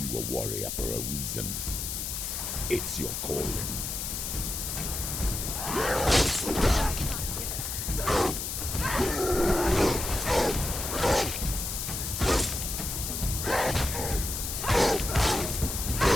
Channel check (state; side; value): noise; left; hiss, 4 dB below the sound